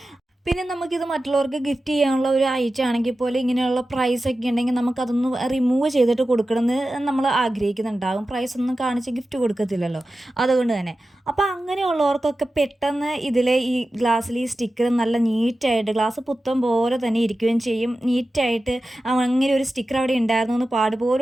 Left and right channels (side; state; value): both; normal; correlation 0.94